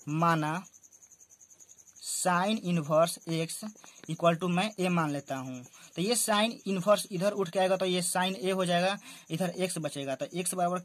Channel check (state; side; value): identical; both; correlation 1.00